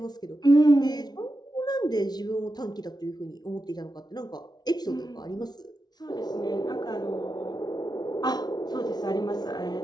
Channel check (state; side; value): late; right; 0.19 ms